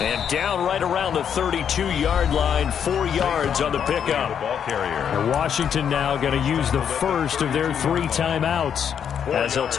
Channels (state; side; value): quieter; right; 8.1 dB